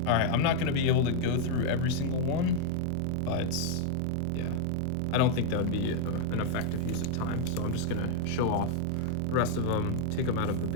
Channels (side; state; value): both; different; correlation 0.00